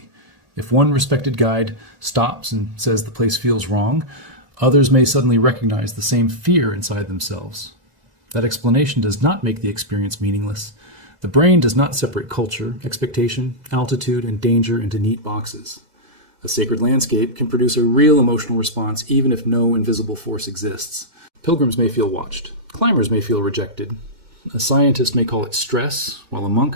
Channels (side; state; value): left; late; 1.9 ms